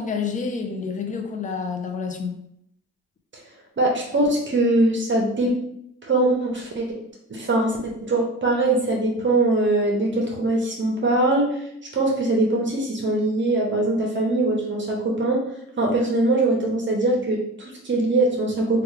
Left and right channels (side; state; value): both; normal; correlation 0.33